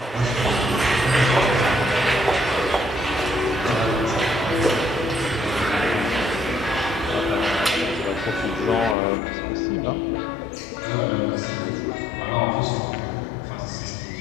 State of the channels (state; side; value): drops out; right; at 9.0 s